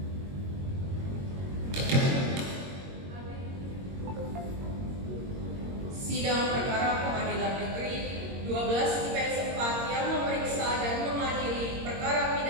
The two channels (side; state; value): left; late; 22 ms